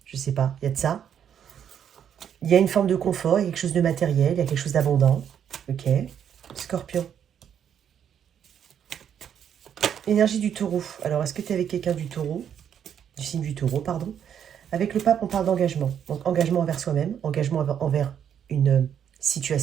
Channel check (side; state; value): left; quieter; 8.8 dB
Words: je sais pas, il y a de ça. Il y a une forme de confort, il y a quelque chose de matériel, il y a quelque chose d'abondant. Ok. Scorpion. Énergie du taureau. Alors, est-ce que tu es avec quelqu'un du taureau? Du signe du taureau, pardon. Avec le pape, on parle d'engagement. Donc, engagement envers soi-même, engagement envers une